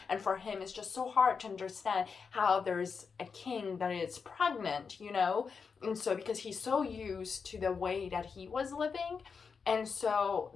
And for him, it's just so hard to understand how there's a king that is pregnant, And so because he's so used to the way that he was living. And so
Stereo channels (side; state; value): right; quieter; 5.6 dB